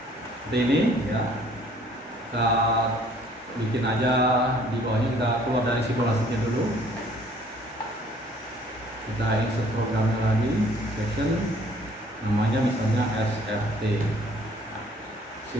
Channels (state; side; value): normal; both; correlation 0.58